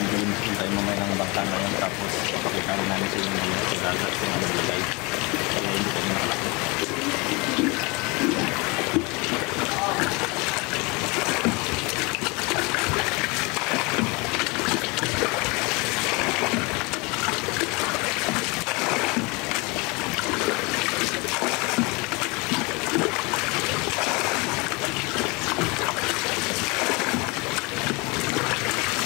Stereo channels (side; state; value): right; quieter; 27.2 dB